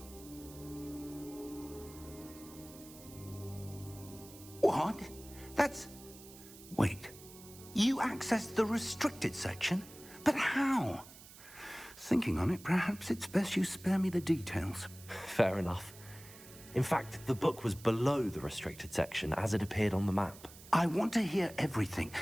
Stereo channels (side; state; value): right; noise; hiss, 18 dB below the sound